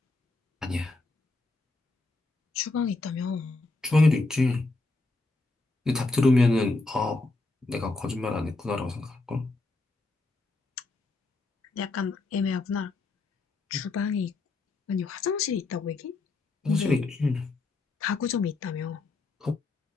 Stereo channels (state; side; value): quieter; right; 3.3 dB